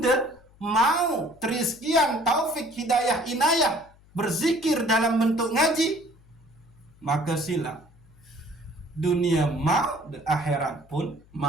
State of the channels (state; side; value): noise; left; hum, 27 dB below the sound